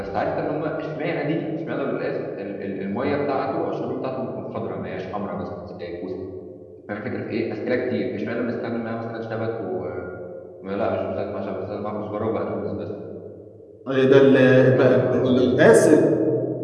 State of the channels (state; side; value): identical; both; correlation 1.00